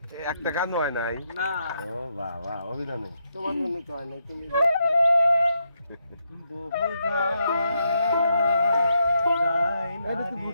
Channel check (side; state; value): both; inverted; correlation -0.81